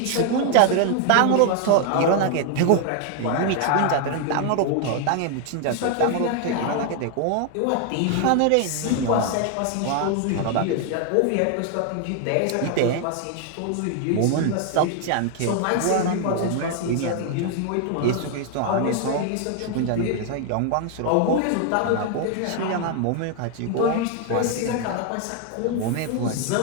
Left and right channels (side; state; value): both; different; correlation 0.00